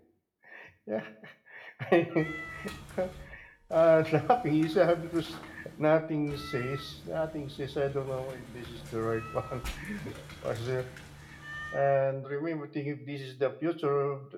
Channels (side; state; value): both; identical; correlation 1.00